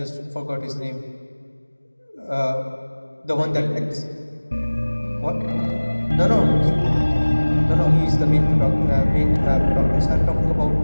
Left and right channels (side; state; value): both; inverted; correlation -1.00